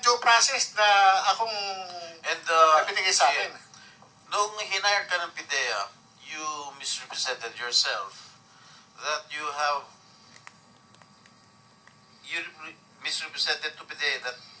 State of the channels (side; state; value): both; identical; correlation 1.00